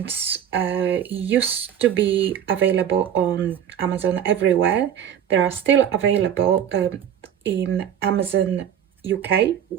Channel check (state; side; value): quieter; left; 9.5 dB